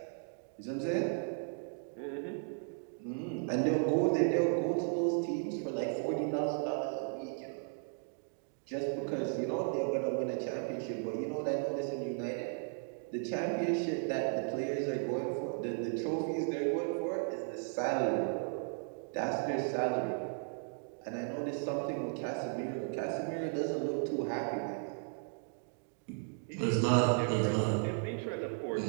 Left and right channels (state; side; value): silent; left; 54 dB below the other